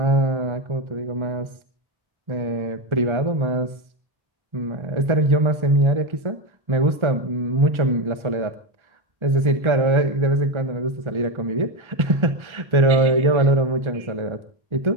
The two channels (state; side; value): late; left; 1.3 ms